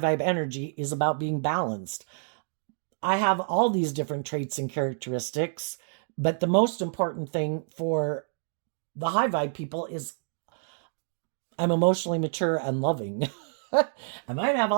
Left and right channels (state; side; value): silent; left; digital silence